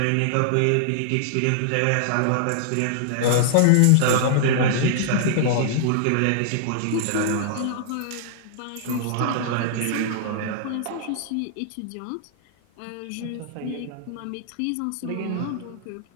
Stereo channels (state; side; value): different; both; correlation -0.01